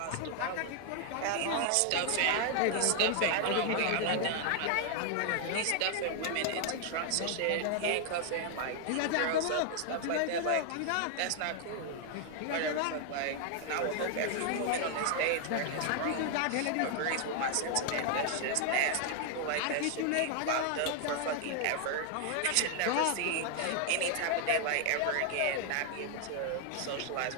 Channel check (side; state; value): both; different; correlation 0.00